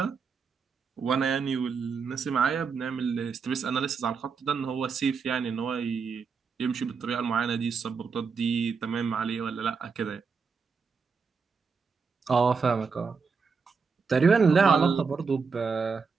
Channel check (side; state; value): left; quieter; 5.3 dB